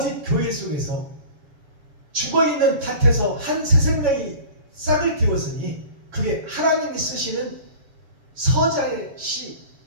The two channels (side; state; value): left; late; 7.2 ms